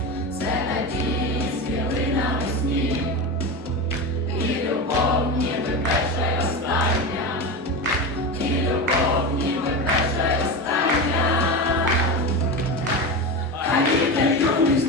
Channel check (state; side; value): normal; both; correlation 0.22